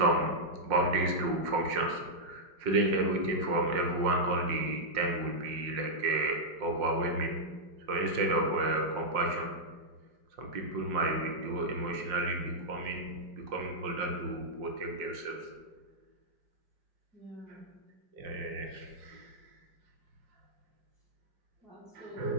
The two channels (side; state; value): left; late; 5.6 ms